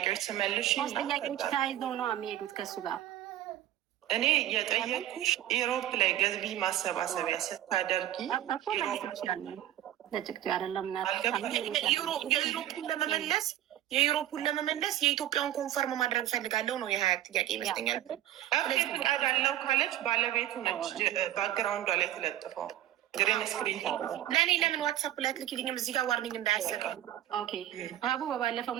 ስመልሽ ጥያቄዎች ተያይዘው ነው የሚሄዱት ከሱ ጋር። እኔ የጠየኩሽ ኢሮፕ ላይ ገቢ ማሰባሰቢያ ስታደርጊ የዩሮፑን ለመመለስ የኢትዮጵያን ኮንፈርም ማድረግ ፈልጋለሁ ነው የ20 ጥያቄ ይመስለኛል። ፍቃድ አለው ካለች ባለቤቱ ነች ባክግራውንዷ ላይ ተለጥፈው ግሪን ስክሪን ለእኔ ለምን ዋትሳፕ ላይ አትልኪልኝም? እዚህ ጋር ዋርኒንግ እንዳያሰጥ። አቡ በባለፈው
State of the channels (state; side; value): quieter; left; 12.9 dB